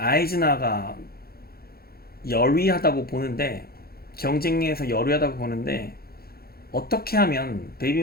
열위하다고 보는데 경쟁에서 열위하다고 보는데 어떻게 하면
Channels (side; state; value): right; late; 0.44 ms